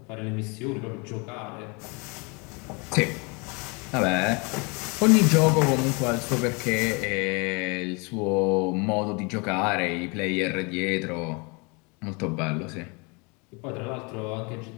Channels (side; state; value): right; quieter; 30.6 dB